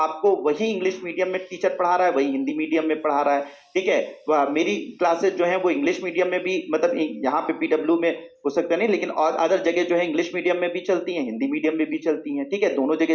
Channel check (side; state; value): both; identical; correlation 1.00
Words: वही इंग्लिश मीडियम में टीचर पढ़ा रहा है, वही हिंदी मीडियम में पढ़ा रहा है, ठीक है। मेरी क्लासेस जो है वो इंग्लिश मीडियम में भी, मतलब यहाँ पे पीडब्ल्यू में हो सकता नहीं, लेकिन और अदर जगह जो है इंग्लिश मीडियम में भी चलती हैं, हिंदी मीडियम में भी चलती हैं, ठीक है, दोनों